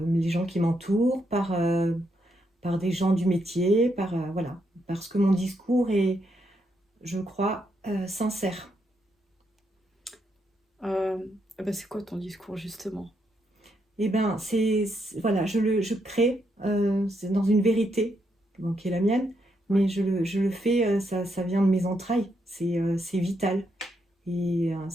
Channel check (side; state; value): both; normal; correlation 0.79